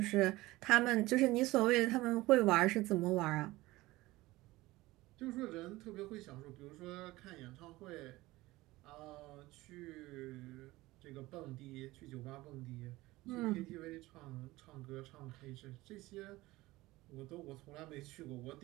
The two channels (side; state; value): left; quieter; 19.2 dB